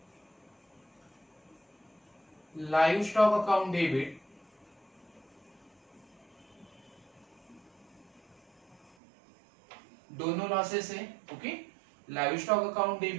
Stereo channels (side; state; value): left; drops out; at 8.9 s